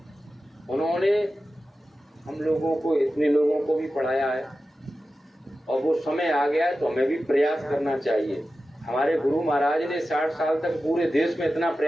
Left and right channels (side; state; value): both; normal; correlation 0.93